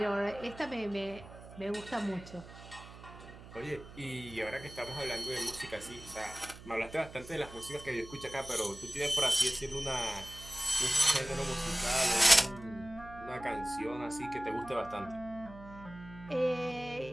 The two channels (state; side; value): noise; right; hum, 16 dB below the sound